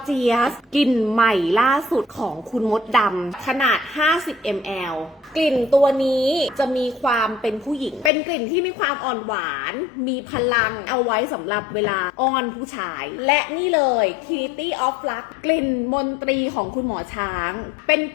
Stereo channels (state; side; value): drops out; right; at 8.1 s